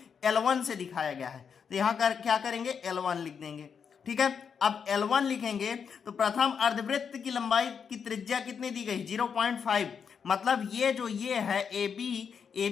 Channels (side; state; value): right; quieter; 6.7 dB